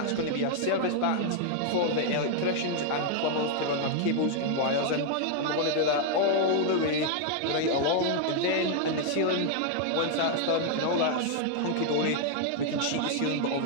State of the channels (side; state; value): both; different; correlation 0.00